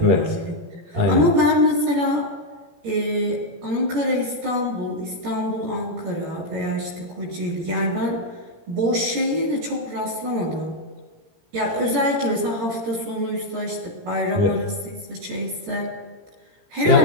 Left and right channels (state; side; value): late; left; 17 ms